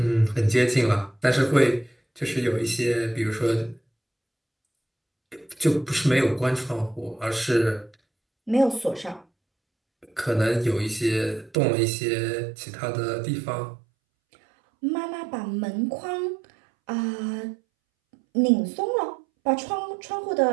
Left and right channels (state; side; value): drops out; left; at 11.6 s